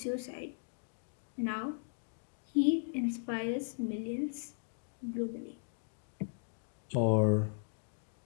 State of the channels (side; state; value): right; silent; digital silence